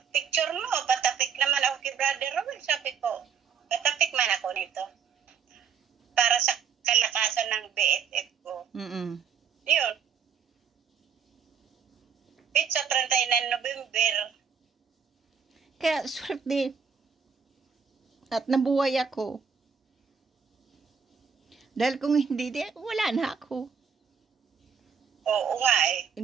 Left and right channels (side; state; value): left; quieter; 6.8 dB